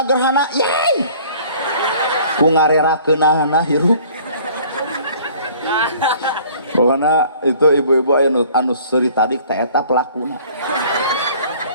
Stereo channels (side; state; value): both; inverted; correlation -0.53